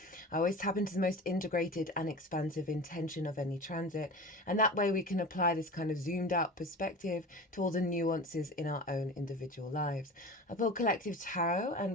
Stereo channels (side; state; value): both; normal; correlation 0.34